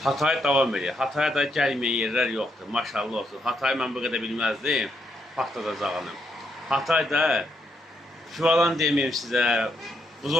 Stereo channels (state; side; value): normal; both; correlation 0.77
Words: Hatay davam edir. Hataya da gəlməyən yerlər yoxdur. Maşallah olsun. Hatayı mən bu qədər bilməzdim. Patladacağını. Hatayda Şüvalan deməyim sizə,